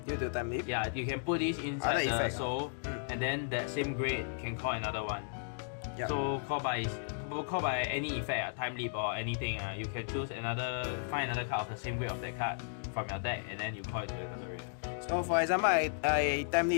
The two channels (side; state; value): right; silent; digital silence